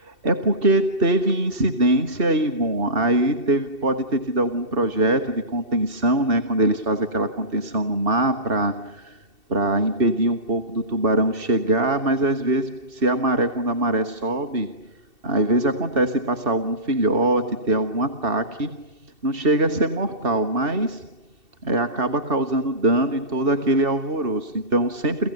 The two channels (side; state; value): left; late; 2.7 ms